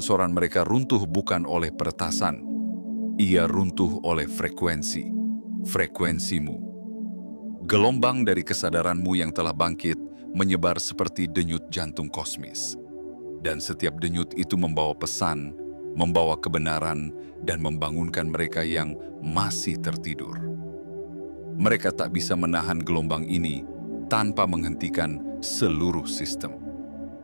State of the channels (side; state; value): both; inverted; correlation -1.00